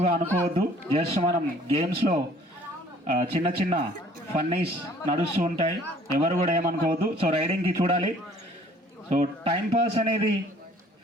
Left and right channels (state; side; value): normal; both; correlation 0.55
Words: అనుకోవద్దు. జస్ట్ మనం గేమ్స్లో చిన్న చిన్న ఫన్నీస్ నడుస్తూ ఉంటాయి, ఎవరు కూడా ఏమనుకోవద్దు. సో రైడింగ్కి చూడాలి. సో టైంపాస్ అనేది